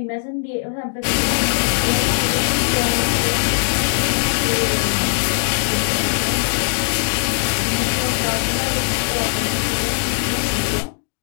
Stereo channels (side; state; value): right; silent; digital silence